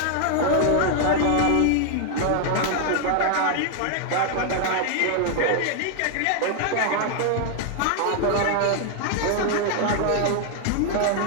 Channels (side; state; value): both; different; correlation 0.00